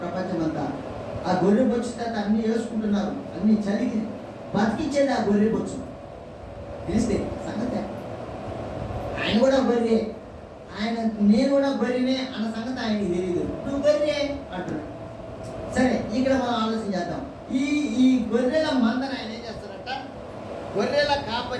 ప్రపంచం అంతా. ఆ గొర్రె బొచ్చు తర్వాత అన్ని వేసుకుంటున్నారు, అన్ని చలికి బతికించేది ఆ గొర్రె బొచ్చు. తెలిస్తే సంగతి ఆయన కూడా గొర్రె, ఆయన నేను కూడా గొర్రెనే అన్న సంగతి ఆయనకి తెలియదు. నువ్వు గొర్రె అంటున్నాడు. సరే, ఇక్కడ మనం ఆలోచన చేద్దాం. ఈ గొర్రెల మందను ఆయన ఏం చేస్తారంట? గొర్రెల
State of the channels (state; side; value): identical; both; correlation 1.00